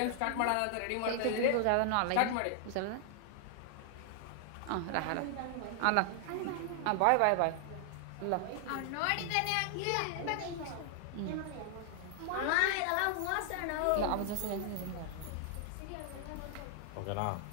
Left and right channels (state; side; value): different; both; correlation 0.00